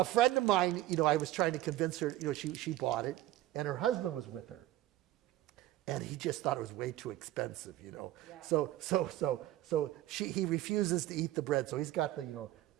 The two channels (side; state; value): left; quieter; 14.7 dB